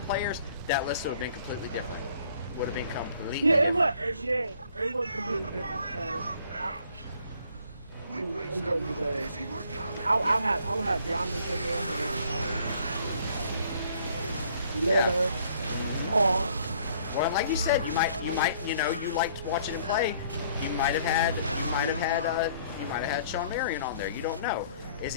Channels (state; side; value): inverted; both; correlation -0.60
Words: players, that list would have been completely different. Would have been completely it was completely different because I'll have Giannis in there, Leonard, Paul. Well, like you said, you liked watching him play. You might have had Sean Marion on there. You don't know. Is